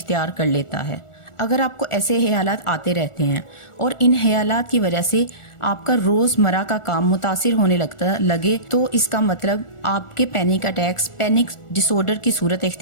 कर लेता है। अगर आपको ऐसे ख्यालात आते रहते हैं और इन ख्यालात की वजह से आपका रोज़मर्रा का काम मुतासिर होने लगे तो इसका मतलब आपके पैनिक अटैक्स पैनिक डिसऑर्डर की सूरत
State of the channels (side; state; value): right; late; 1.4 ms